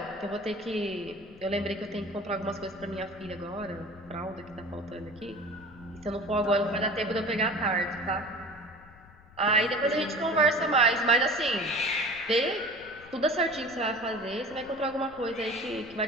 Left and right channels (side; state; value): left; noise; rumble, 23 dB below the sound